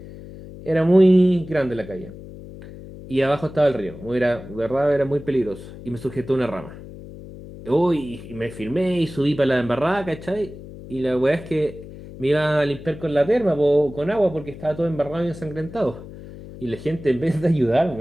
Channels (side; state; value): left; noise; hum, 15 dB below the sound